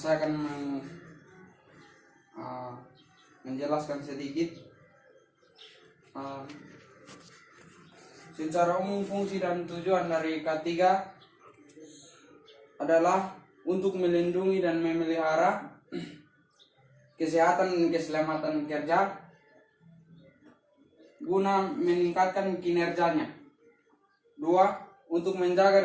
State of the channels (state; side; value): identical; both; correlation 1.00